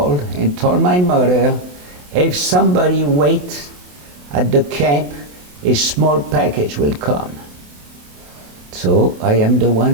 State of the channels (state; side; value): late; left; 28 ms